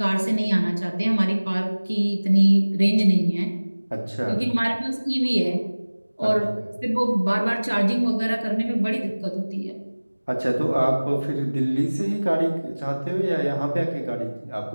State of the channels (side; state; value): both; inverted; correlation -1.00